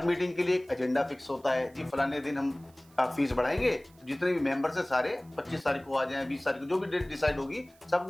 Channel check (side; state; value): right; noise; hiss, 29 dB below the sound